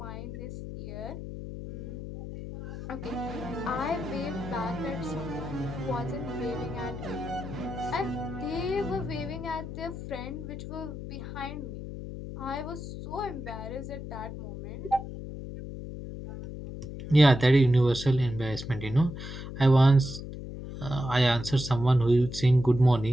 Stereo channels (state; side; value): noise; left; hum, 9 dB below the sound